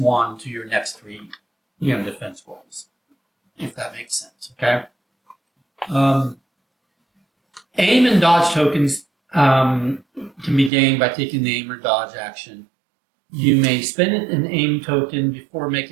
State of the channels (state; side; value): drops out; left; at 10.7 s